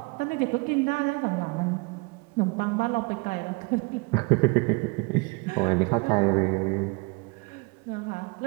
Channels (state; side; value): quieter; left; 28.8 dB